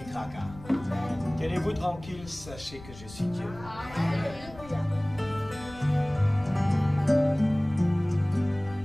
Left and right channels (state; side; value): noise; left; rumble, 17 dB below the sound